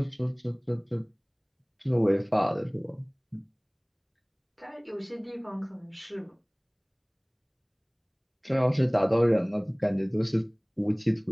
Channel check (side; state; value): both; identical; correlation 1.00